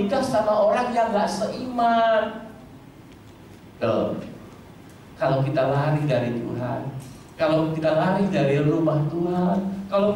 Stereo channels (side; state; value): both; identical; correlation 1.00